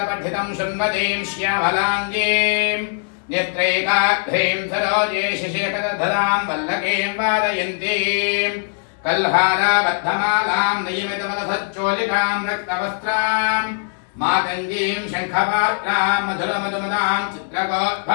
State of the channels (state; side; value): silent; right; digital silence